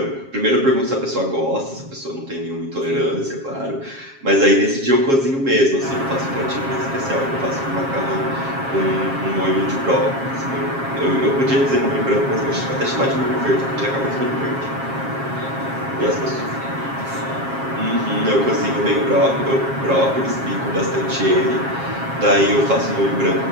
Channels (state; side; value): late; left; 7.4 ms